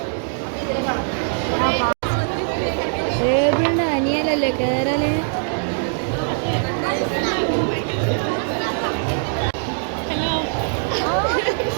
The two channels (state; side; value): silent; left; digital silence